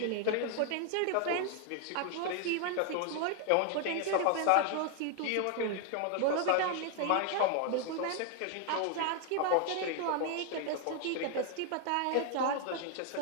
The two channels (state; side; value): different; both; correlation 0.00